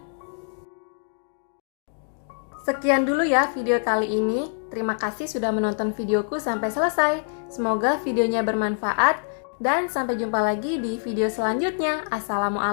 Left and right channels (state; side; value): silent; right; digital silence